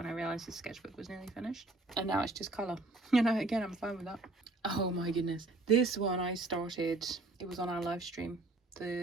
I realised the sketchbook was nearly finished. And now it's just colour. You know, again, I'm fine with that. Oh my goodness. This one I started, it was on our live stream,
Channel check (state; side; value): quieter; left; 3.0 dB